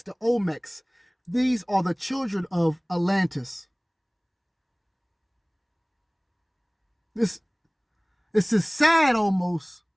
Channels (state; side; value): identical; both; correlation 1.00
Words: the Olmecs, these are the children of Atlantis. This is sad almost